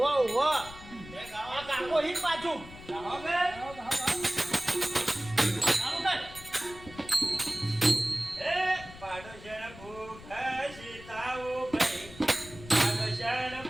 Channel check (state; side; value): noise; left; rumble, 17 dB below the sound